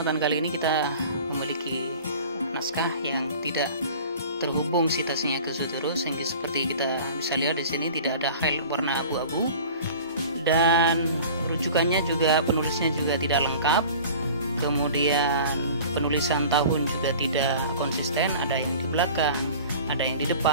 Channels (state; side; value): inverted; both; correlation -0.42